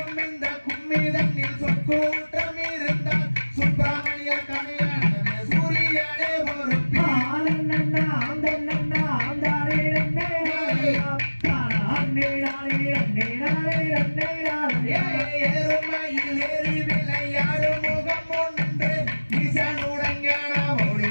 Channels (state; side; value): inverted; both; correlation -1.00